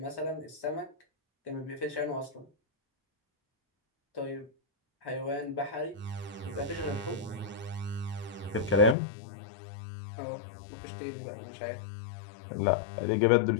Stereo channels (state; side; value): drops out; right; at 9.0 s